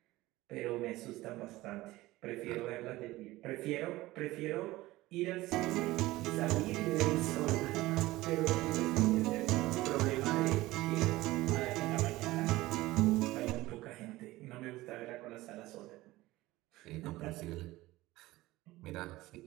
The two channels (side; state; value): left; quieter; 18.3 dB